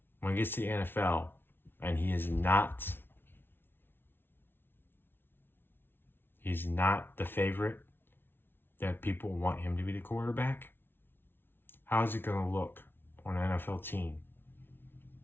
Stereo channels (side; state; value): right; late; 0.11 ms